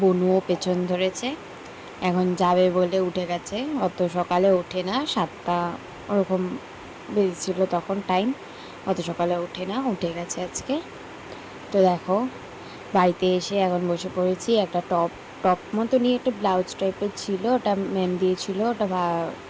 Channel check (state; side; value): identical; both; correlation 1.00